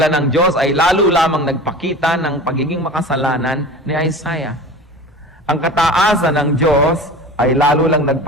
ng Diyos ay lalo lamang nagpakita ng pagiging makasalanan ni Isaiah. Ang kataasan ng Diyos ay lalo lang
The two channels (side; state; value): both; normal; correlation 0.35